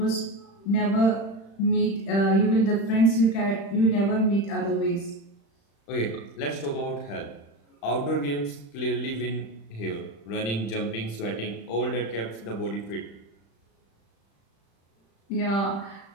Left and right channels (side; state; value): right; late; 35 ms